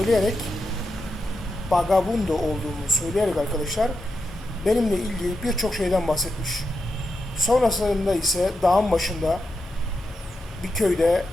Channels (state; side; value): normal; both; correlation 0.87